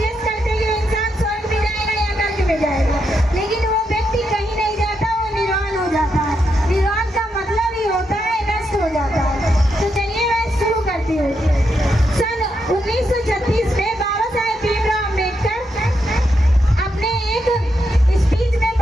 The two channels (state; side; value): normal; both; correlation 0.82